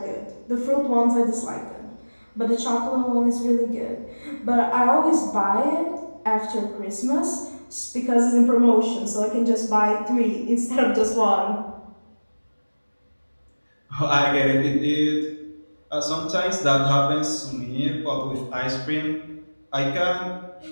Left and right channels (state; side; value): inverted; both; correlation -1.00